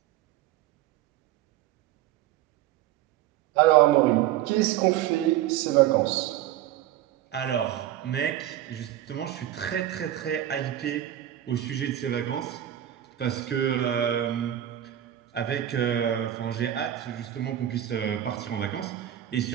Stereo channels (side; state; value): left; quieter; 12.3 dB